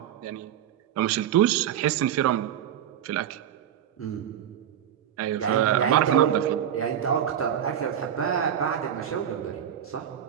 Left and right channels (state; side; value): quieter; left; 9.9 dB